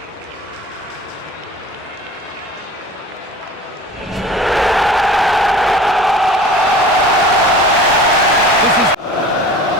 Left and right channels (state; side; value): normal; both; correlation 0.42